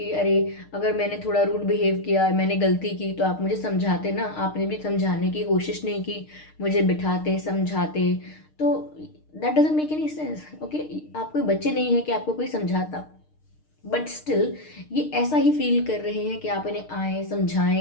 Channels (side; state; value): right; late; 6.5 ms